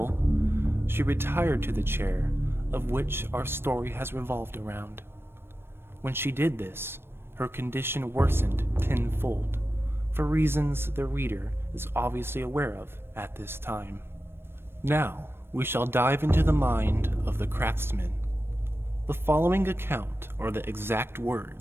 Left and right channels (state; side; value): late; left; 0.11 ms